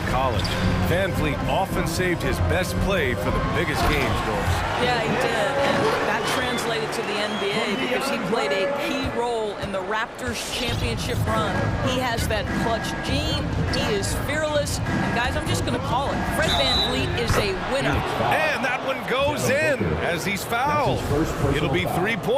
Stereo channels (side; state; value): both; identical; correlation 1.00